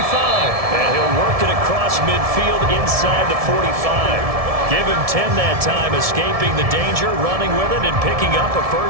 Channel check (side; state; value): left; late; 1.7 ms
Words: And he'll work it across midfield inside the 45. Give him 10 that time, escaping the danger, running with it, and picking up a